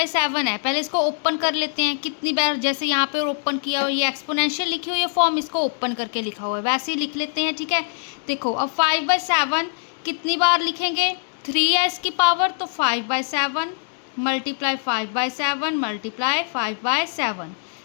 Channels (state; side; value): silent; right; digital silence